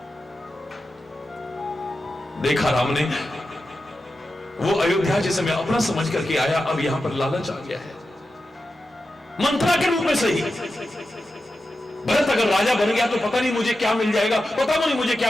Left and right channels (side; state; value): both; normal; correlation 0.91